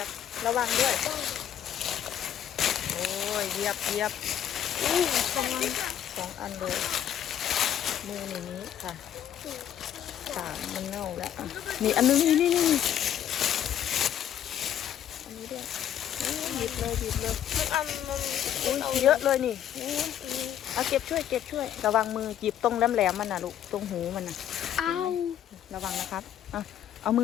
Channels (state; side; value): quieter; right; 10.4 dB